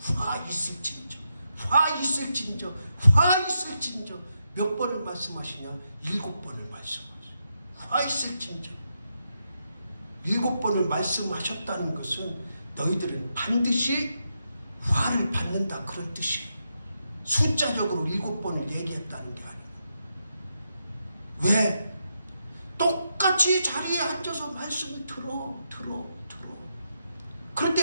화 있을진저, 화 있을진저, 화 있을진저. 몇 번을 말씀하시냐? 7번을 말씀하세요. 화 있을진저. 7번을 말씀하셨다는 것은 너희들은 반드시 화를 받는다, 그런 뜻이에요. 숫자적으로 7번을 얘기했다는 게 아니고. 왜? 똑같이 자리에 앉아서 말씀을 들어.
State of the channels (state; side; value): inverted; both; correlation -0.83